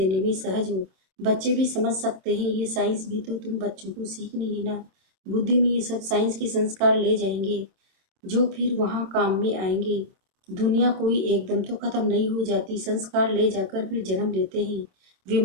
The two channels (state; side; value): late; left; 26 ms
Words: में सहज हो। बच्चे भी समझ सकते हैं। ये साइंस भी तो तुम बच्चों को सीखनी है ना। बुद्धि में ये सब साइंस के संस्कार ले जाएंगे जो फिर वहाँ काम में आएंगे। दुनिया कोई एकदम तो खत्म नहीं हो जाती। संस्कार ले जाकर फिर जन्म लेते हैं।